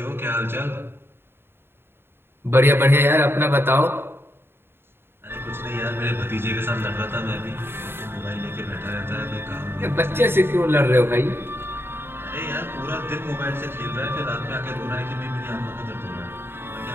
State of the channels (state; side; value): late; left; 0.11 ms